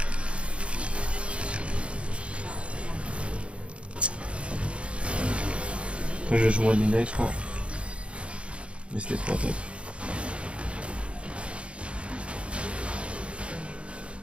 Moi je vais jouer à Midnight je crois. Mais c'était trop top.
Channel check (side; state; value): left; late; 0.059 ms